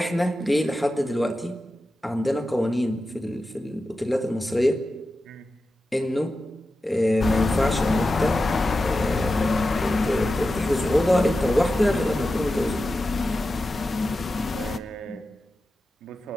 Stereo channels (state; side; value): normal; both; correlation 0.92